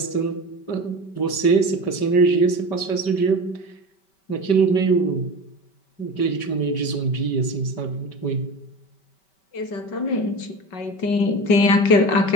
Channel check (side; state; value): right; late; 5.2 ms